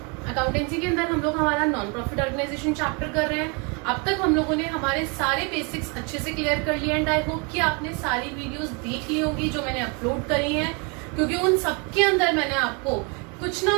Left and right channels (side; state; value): left; quieter; 32.6 dB